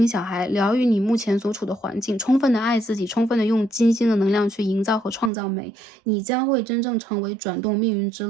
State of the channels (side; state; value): left; drops out; at 5.3 s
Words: 小孩，疗愈你目前所处的环境，充分的爱自己，充分的用金星的能量去营造和创造美，你将会真正成为转动命运之